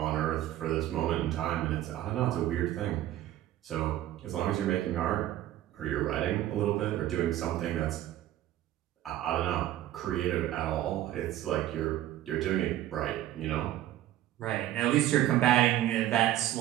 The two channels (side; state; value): left; quieter; 13.4 dB